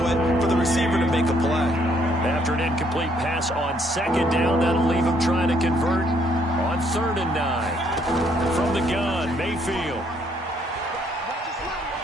it for the receiver to make a play. After an incomplete pass on second down, that'll leave him trying to convert on 3rd and 9. From the gun, Mayfield.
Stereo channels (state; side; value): normal; both; correlation 0.68